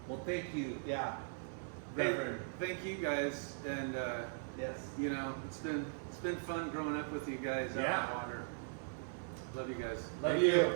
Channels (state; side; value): silent; left; 51 dB below the other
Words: Well, thank you, Yeah. Reverend. Thank you guys, and Yes. you know it's been fun growing up with you guys out Yeah. on the water. Love you guys. Love Thank you. you.